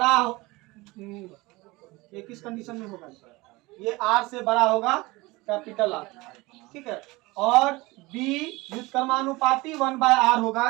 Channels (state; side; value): quieter; left; 22.1 dB